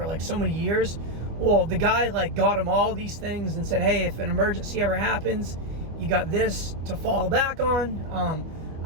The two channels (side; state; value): left; late; 25 ms